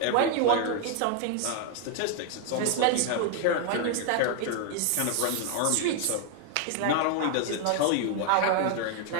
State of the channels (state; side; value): different; both; correlation 0.00